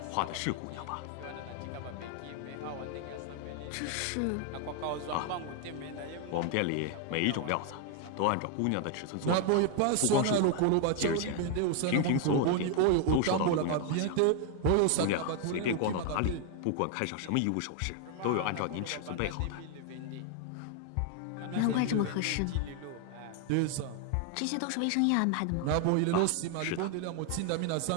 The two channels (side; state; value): both; different; correlation 0.00